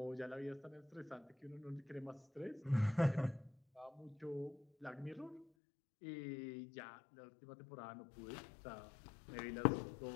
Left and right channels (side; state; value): right; drops out; at 5.5 s